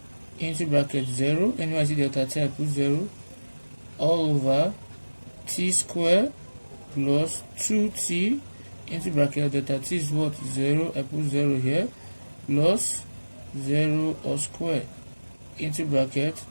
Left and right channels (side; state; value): both; inverted; correlation -1.00